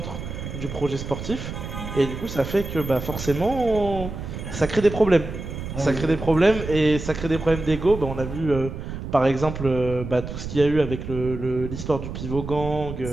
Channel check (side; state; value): right; noise; rumble, 8 dB below the sound